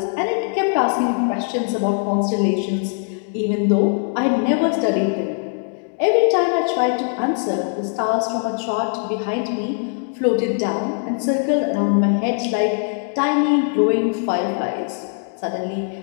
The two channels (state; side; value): silent; right; 56 dB below the other